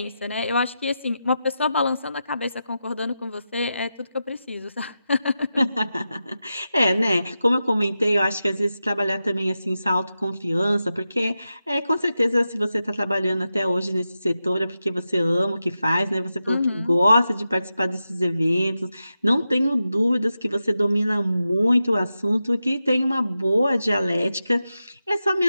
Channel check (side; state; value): both; inverted; correlation -0.90